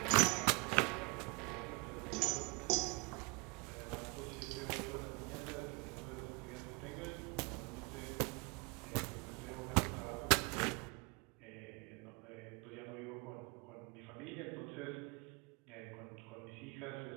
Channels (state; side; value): quieter; left; 30.1 dB